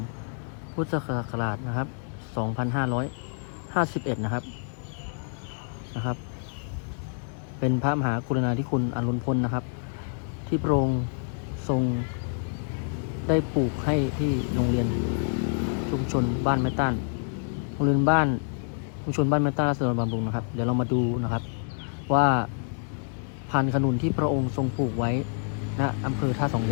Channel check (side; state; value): right; silent; 55 dB below the other